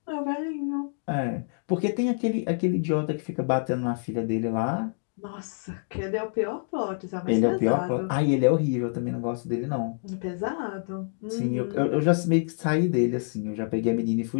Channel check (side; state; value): right; silent; digital silence